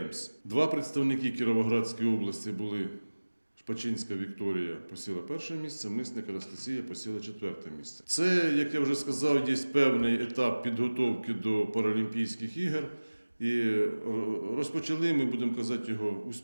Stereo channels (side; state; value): both; inverted; correlation -1.00